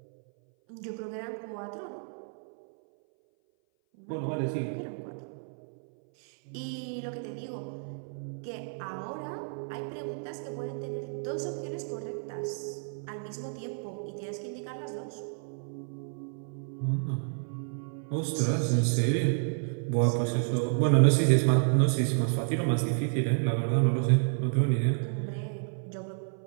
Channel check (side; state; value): left; silent; 57 dB below the other